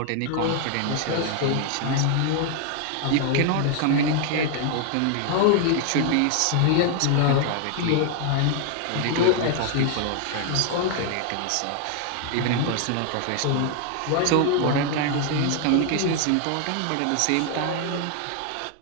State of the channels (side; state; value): both; different; correlation 0.00